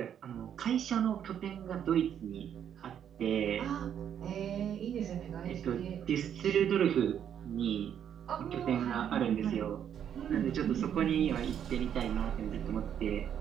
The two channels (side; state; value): left; quieter; 9.1 dB